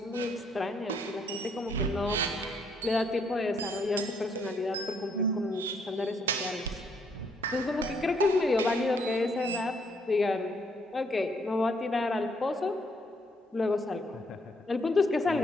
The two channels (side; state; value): both; normal; correlation 0.70